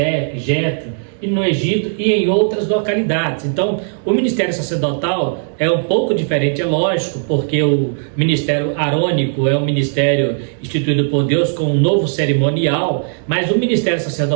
Jetro, e no Egito e em outras localidades. Então, o ministério sacerdotal é um pouco diferente, é lógico, porque o ministério arônico é um ministério instituído por Deus com um novo cerimonial, mas o ministério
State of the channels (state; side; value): silent; left; digital silence